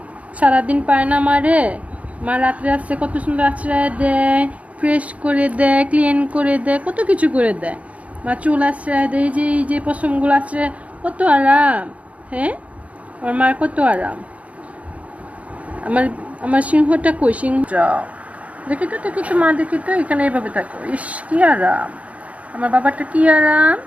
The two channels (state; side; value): late; left; 0.066 ms